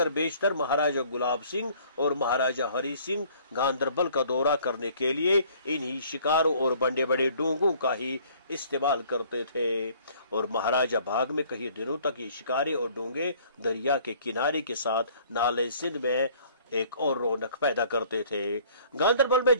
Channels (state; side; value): inverted; both; correlation -0.56